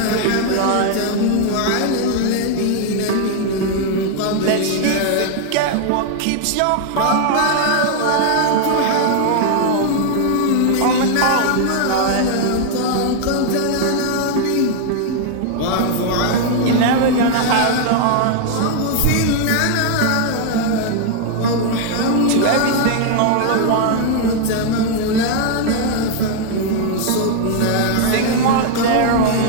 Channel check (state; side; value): different; both; correlation 0.00